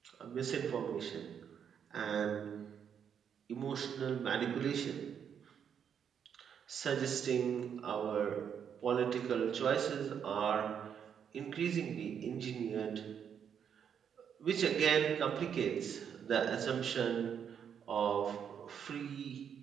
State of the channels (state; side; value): quieter; left; 8.0 dB